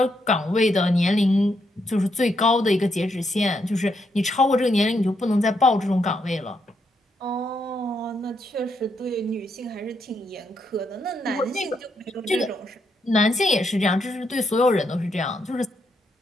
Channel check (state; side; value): normal; both; correlation 0.78